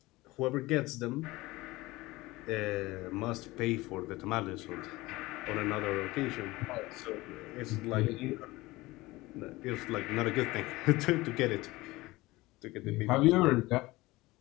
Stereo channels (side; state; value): right; quieter; 20.2 dB